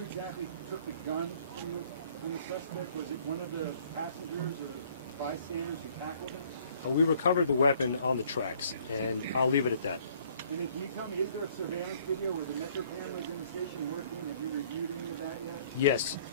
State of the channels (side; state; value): both; inverted; correlation -0.59